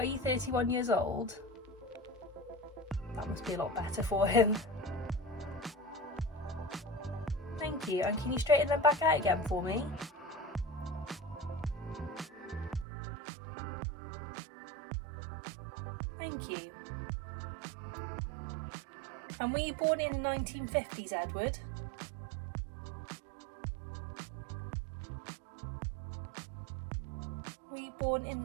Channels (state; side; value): drops out; left; at 12.9 s